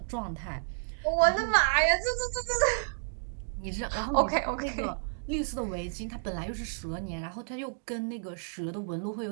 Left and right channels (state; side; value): silent; left; digital silence